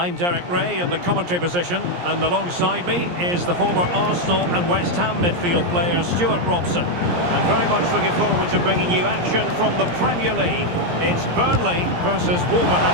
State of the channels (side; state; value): left; late; 17 ms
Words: Derek Ray in the commentary position, and alongside me is the former Arsenal and West Ham midfield player Stuart Robson. And very much looking forward to bringing you action from the Premier League. It's Burnley versus